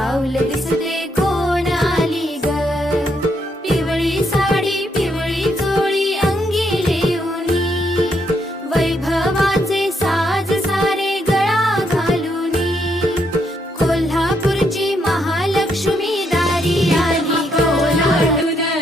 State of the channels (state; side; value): normal; both; correlation 0.76